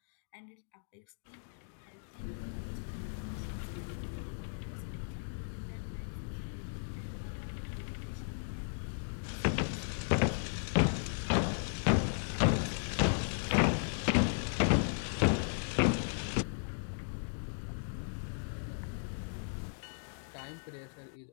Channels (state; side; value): silent; right; digital silence